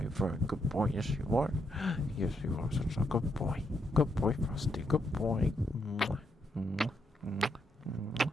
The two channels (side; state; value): both; normal; correlation 0.79